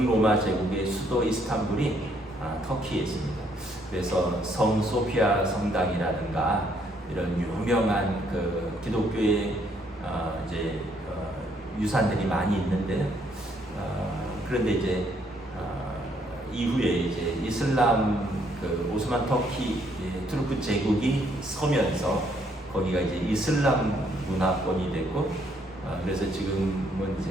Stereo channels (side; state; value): both; normal; correlation 0.69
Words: 제국의 수도 이스탄불이 터키에 있습니다. 그래서 성 소피아 성당이라든가 이런 유명한 기독교의 이제 유산들이 많이 있는데 그런데 이제 이후에 이제 이슬람 오스만 터키 투르크 제국이 서면서 거기가 이제 이슬람 문화권이 됐고 그래서 지금은